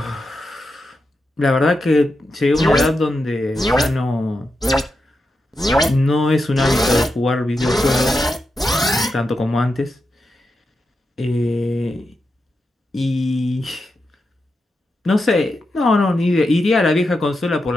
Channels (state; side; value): normal; both; correlation 0.87